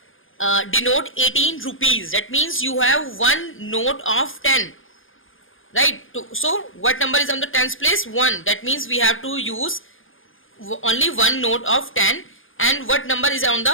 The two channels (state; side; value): late; right; 0.58 ms